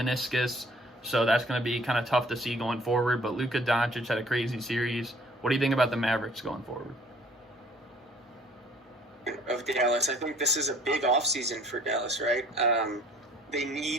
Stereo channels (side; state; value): both; normal; correlation 0.56